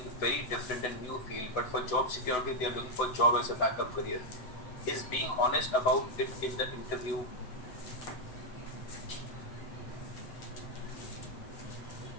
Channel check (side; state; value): right; late; 8.1 ms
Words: very different and new field, but for job security, they are looking for job as a backup career. Is being honest about it in the interview